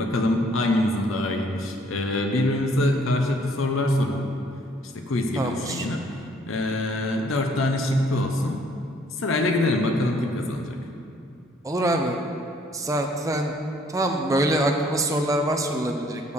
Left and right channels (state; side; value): normal; both; correlation 0.62